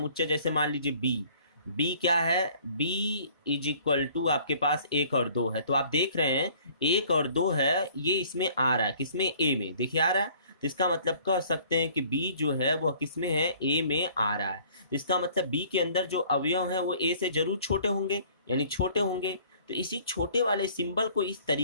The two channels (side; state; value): both; inverted; correlation -0.55